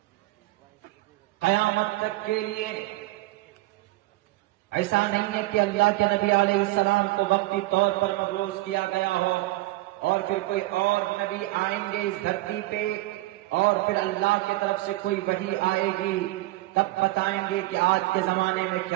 قیامت تک کے لیے۔ ایسا نہیں ہے کہ اللہ کے نبی علیہ السلام کو وقتی طور پر مبعوث کیا گیا ہو اور پھر کوئی اور نبی آئیں گے اس دھرتی پہ اور پھر اللہ کی طرف سے کوئی وحی آئے گی، تب بتائیں گے کہ آج کے زمانے میں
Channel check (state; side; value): quieter; left; 19.2 dB